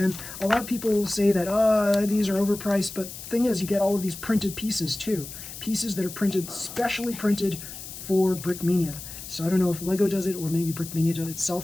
a lot of people say that, these are overpriced, but the thing is, you get all of these printed pieces too. Pieces that are printed, specially printed for Brickmania. So I don't know if Lego does it, or maybe Brickmania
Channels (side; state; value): left; noise; hiss, 12 dB below the sound